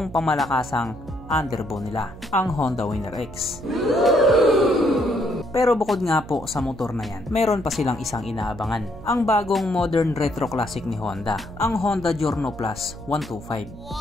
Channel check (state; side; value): noise; right; hum, 16 dB below the sound